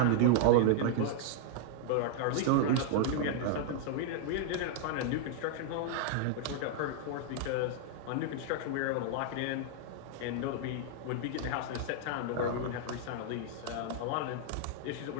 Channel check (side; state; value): both; different; correlation -0.01